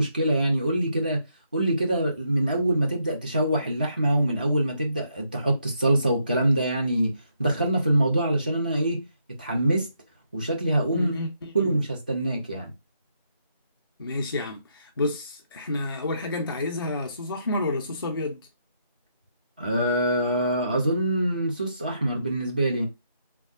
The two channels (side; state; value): both; inverted; correlation -0.76